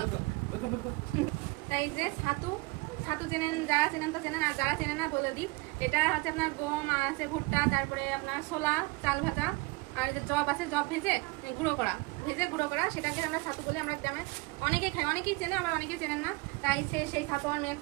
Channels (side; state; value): left; quieter; 25.2 dB